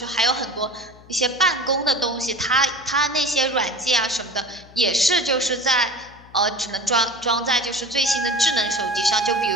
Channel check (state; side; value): noise; left; hum, 23 dB below the sound